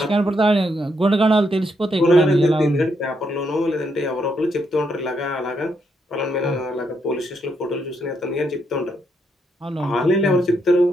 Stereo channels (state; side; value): normal; both; correlation 0.78